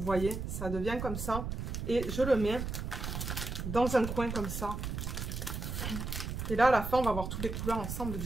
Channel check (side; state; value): right; noise; rumble, 4 dB below the sound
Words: voyez, ça devient comme ça. Et je le mets dans un coin comme ça. Et là à la fin on va voir toutes les couleurs ensemble,